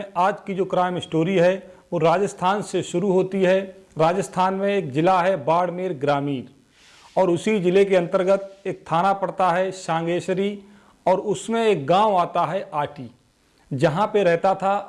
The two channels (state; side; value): identical; both; correlation 1.00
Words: आज की जो क्राइम स्टोरी है वो राजस्थान से शुरू होती है। राजस्थान में एक ज़िला है बाड़मेर ग्रामीण और उसी ज़िले के अंतर्गत एक थाना पड़ता है सांगेश्वरी और उसमें एक गांव आता है आटी, जहां पे रहता था